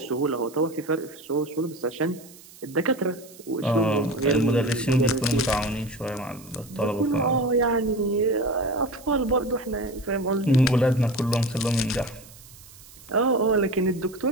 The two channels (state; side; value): noise; right; hiss, 21 dB below the sound